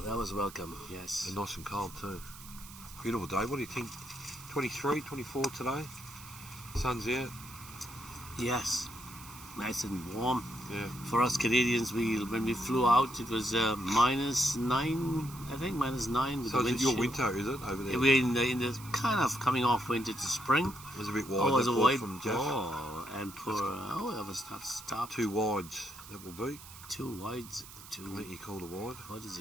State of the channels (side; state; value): right; noise; hiss, 16 dB below the sound